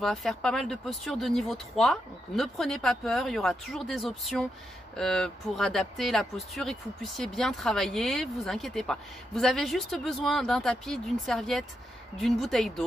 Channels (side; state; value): both; normal; correlation 0.83